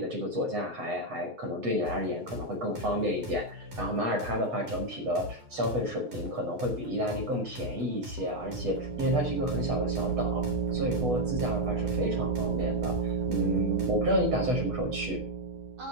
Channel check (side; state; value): left; late; 8.0 ms